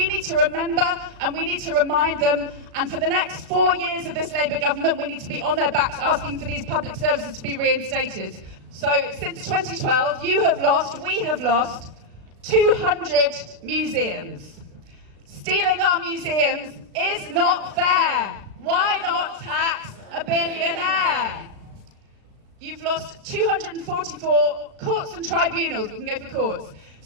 need to remember and we need to remind them, and for the next 4 years of this Labour government we need to be on their backs asking for these public services to be reinstated. So since 2012 we have lost 200 museums. Stealing our museums is not fair. Why not tax a billionaire? You've lost 244 courts and tribunals. We can go for courts.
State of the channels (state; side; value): late; left; 36 ms